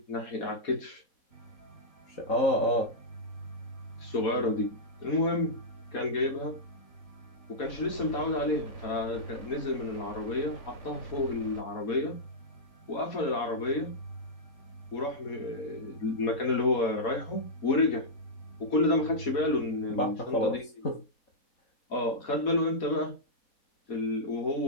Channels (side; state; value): right; late; 4.2 ms